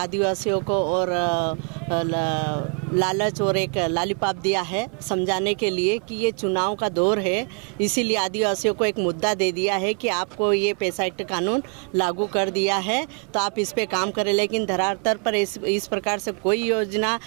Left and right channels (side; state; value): left; quieter; 39.2 dB